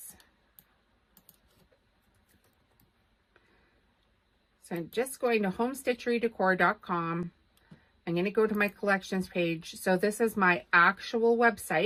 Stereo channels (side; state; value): both; identical; correlation 1.00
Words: So I'm just going to homestitcherydecor.com. I'm going to go to my collections page. So this is my actual